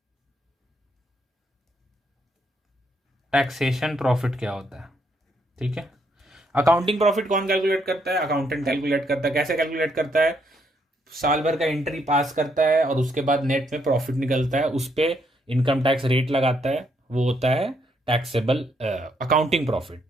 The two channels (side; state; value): both; normal; correlation 0.73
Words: टैक्सेशन प्रॉफिट क्या होता है। ठीक है, अकाउंटिंग प्रॉफिट कौन कैलकुलेट करता है, अकाउंटेंट कैलकुलेट करता है। कैसे कैलकुलेट करता है, साल भर का एंट्री पास करता है और उसके बाद नेट में प्रॉफिट निकलता है, उस पर इनकम टैक्स रेट लगाता है, वो होता है टैक्सेबल अकाउंटिंग प्रॉफिट।